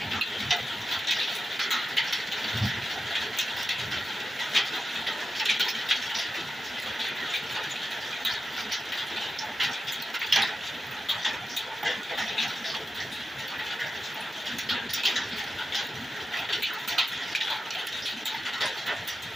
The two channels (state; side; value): normal; both; correlation 0.91